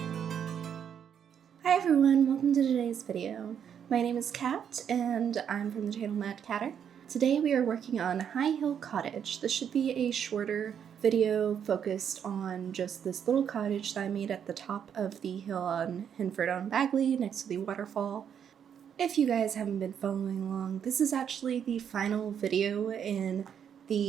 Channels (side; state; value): left; quieter; 8.3 dB